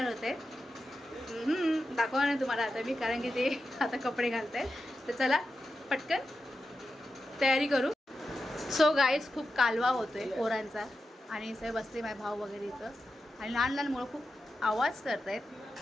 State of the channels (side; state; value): both; normal; correlation 0.91